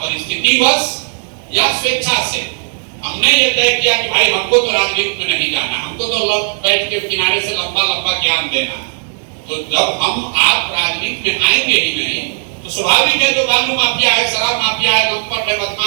परिस्थितिवश या स्वेच्छा से हमने ये तय किया कि भाई हमको तो राजनीति में नहीं जाना, हमको तो बैठ के किनारे से लंबा लंबा ज्ञान देना है। तो जब हम आप राजनीति में आएंगे ही नहीं तो स्वाभाविक है जो बालू माफिया है, शराब माफिया है, लंपट है,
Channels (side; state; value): left; silent; 70 dB below the other